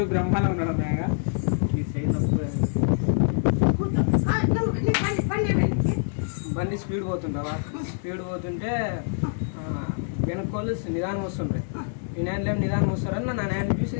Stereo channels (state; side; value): silent; right; digital silence